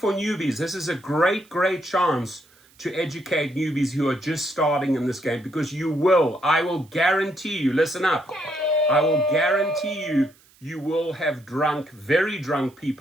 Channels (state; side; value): noise; right; hiss, 30 dB below the sound